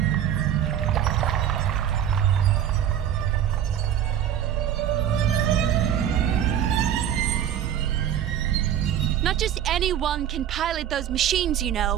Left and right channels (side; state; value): left; quieter; 10.0 dB